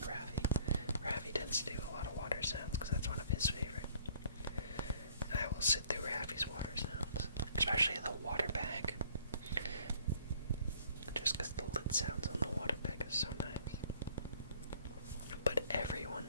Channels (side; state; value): both; inverted; correlation -0.58